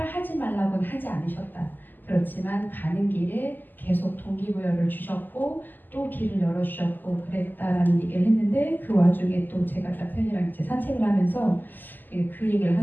하지 말라고는 하지 않으셨다. 그렇지만 가는 길에 계속 동기부여를 주셨고 또 길을 열어주셨고 그랬다라는 얘기를 했는데 그 와중에 또 제가 남편이랑 이제 산책을 하면서 그 얘기를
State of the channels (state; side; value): late; right; 0.088 ms